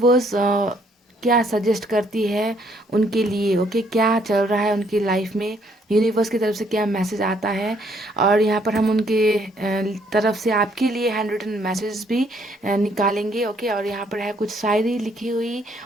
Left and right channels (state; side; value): normal; both; correlation 0.67